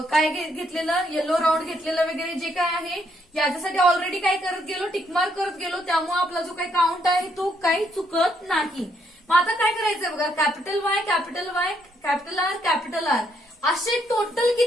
काय घेतलेलं, येलो राऊंड घेतलेलं वगैरे जे काय आहे याच्यासाठी ऑलरेडी काय करत गेलो, टिकमार्क करत गेलो, त्यामुळे आपला जो काही काउंट आहे तो काही चुकत नाही. मग आता काय करायचंय बघा, capital Y, capital Y, capital R, capital R असे टोटल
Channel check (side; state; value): both; normal; correlation 0.73